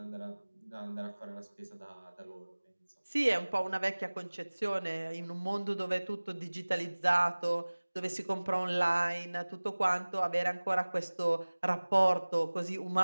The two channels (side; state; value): both; inverted; correlation -1.00